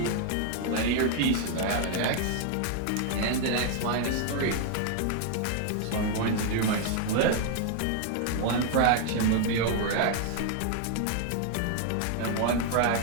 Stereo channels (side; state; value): both; different; correlation 0.00